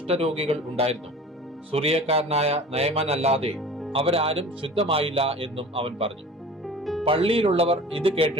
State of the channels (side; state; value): both; normal; correlation 0.40